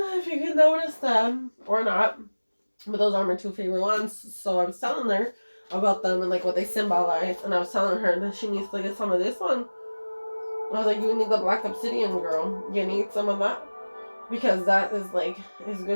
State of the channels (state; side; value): inverted; both; correlation -1.00